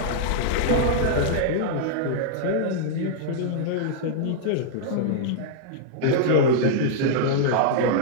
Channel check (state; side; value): different; both; correlation -0.01